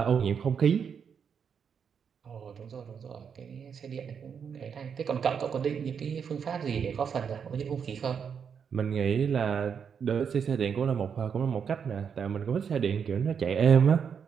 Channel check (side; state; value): left; quieter; 7.0 dB